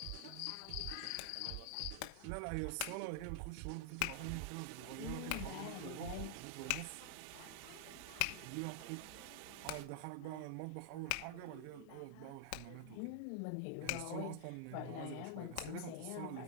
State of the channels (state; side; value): different; both; correlation 0.00